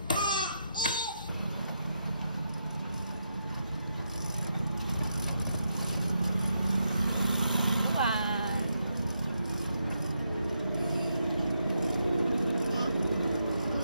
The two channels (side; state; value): both; inverted; correlation -0.82